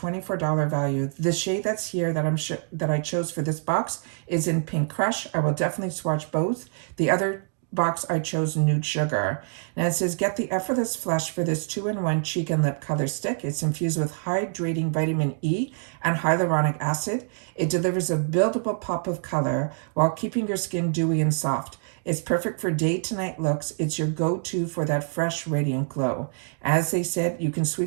value. The shade that's here that I chose for this box is in Pink Crush. I will definitely swatch both. The other box I chose Nude Sugar. Now it says, get the effortless flush for this 2-in-1 cheek and lip color stick. It's infused with hydrating vitamin E and hyaluronic acid. It delivers a buildable pop of color while keeping your skin dewy and soft. It's perfect for day to night looks. It's your go-to for that fresh, radiant glow. As they said, you can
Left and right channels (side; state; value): left; silent; 61 dB below the other